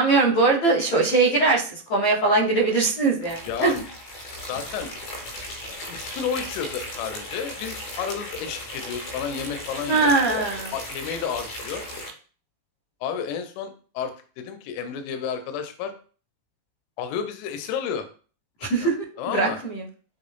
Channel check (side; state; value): right; late; 18 ms